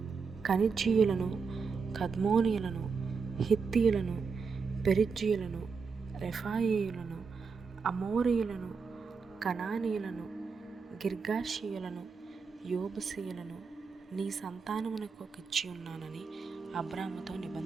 కనిజ్జీయులను, కద్మోనీయులను, హిత్తీయులను, పెరిజ్జీయులను, రెఫాయీయులను, అమోరీయులను, కనానీయులను, గిర్గాషీయులను, యోబుసీయులను నీ సంతానమునకు ఇచ్చి ఉన్నానని అబ్రాముతో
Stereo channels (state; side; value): quieter; left; 5.2 dB